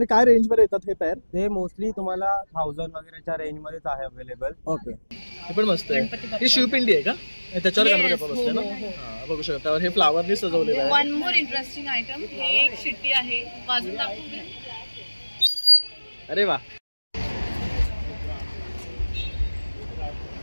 काय रेंज मध्ये येतात हे पेअर? ते मोस्टली तुम्हाला 1000 वगैरेच्या रेंज मध्येच आहे अवेलेबल. ओके, हे पण मस्त आहे. ही शिवपिंडी आहे का? त्याच्यावर गणपती बाप्पा बसले ना. हां, बघू शकता. हे फ्लावरनी सजवलेलं आहे. वन मोर इंटरेस्टिंग आयटम, हे एक शिट्टी आहे, बाजूला दाखवू. अरे वा,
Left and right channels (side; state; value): both; inverted; correlation -1.00